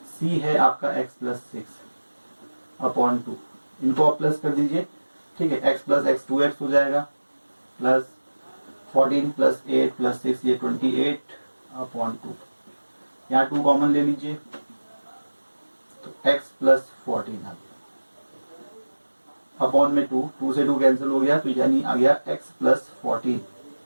सी है आपका एक्स प्लस 6 अपॉन 2। इनको आप प्लस कर दीजिए। ठीक है, एक्स प्लस एक्स 2x हो जाएगा, प्लस 14 प्लस 8 प्लस 6 ये 28 अपॉन 2। यहाँ 2 कॉमन ले लीजिए, तो x प्लस 14 आ गया अपॉन में 2 से 2 कैंसिल हो गया, तो यानी आ गया x प्लस 14।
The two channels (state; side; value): inverted; both; correlation -1.00